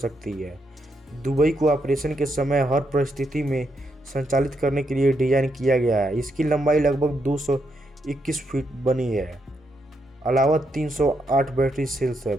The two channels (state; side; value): normal; both; correlation 0.79